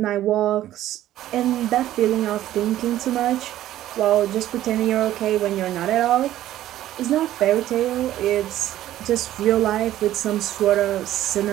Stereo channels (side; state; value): left; quieter; 13.4 dB